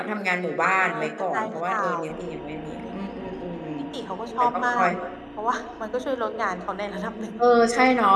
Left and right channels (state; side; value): identical; both; correlation 1.00